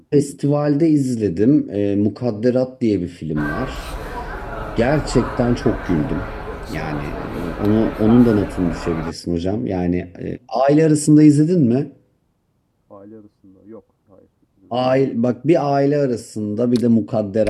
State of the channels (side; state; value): both; identical; correlation 1.00